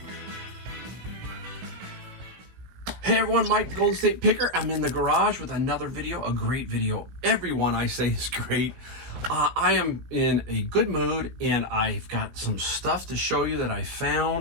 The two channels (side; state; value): left; late; 16 ms